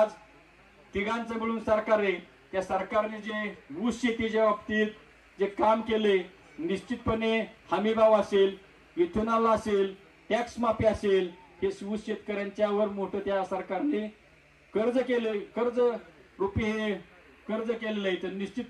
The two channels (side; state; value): both; identical; correlation 1.00